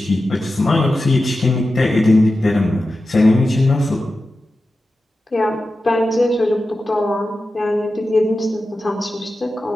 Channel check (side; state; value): both; normal; correlation 0.93